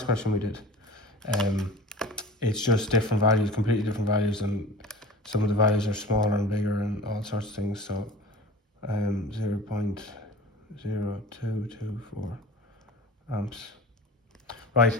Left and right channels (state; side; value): normal; both; correlation 0.39